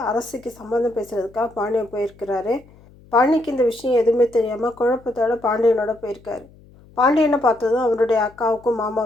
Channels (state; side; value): noise; left; hum, 25 dB below the sound